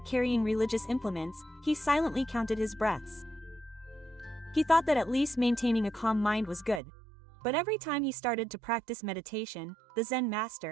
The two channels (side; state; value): left; drops out; at 6.8 s